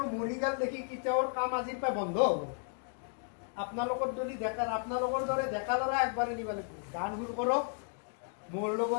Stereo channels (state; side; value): silent; right; 55 dB below the other